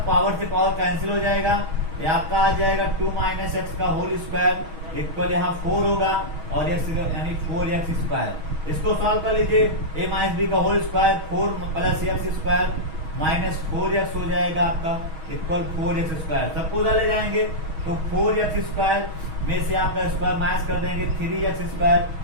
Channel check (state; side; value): late; left; 6.3 ms